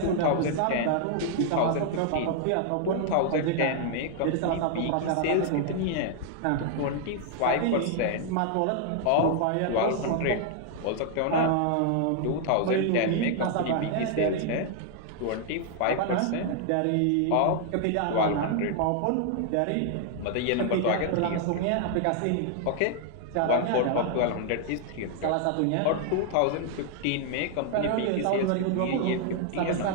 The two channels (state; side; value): different; both; correlation 0.00